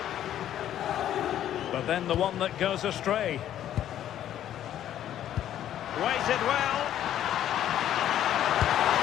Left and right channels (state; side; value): quieter; right; 11.3 dB